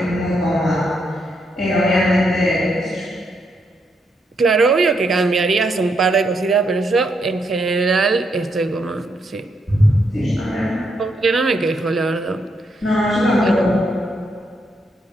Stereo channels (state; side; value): normal; both; correlation 0.78